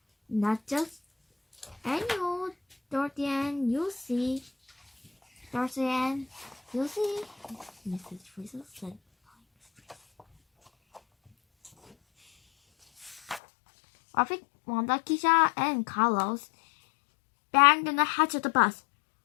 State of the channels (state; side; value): drops out; right; at 13.4 s